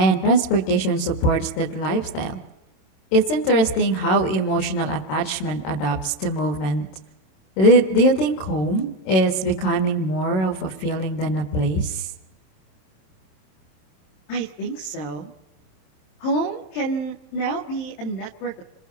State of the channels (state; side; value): late; right; 27 ms